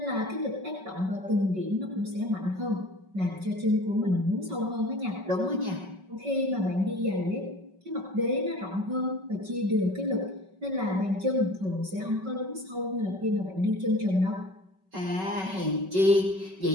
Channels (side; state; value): left; late; 5.3 ms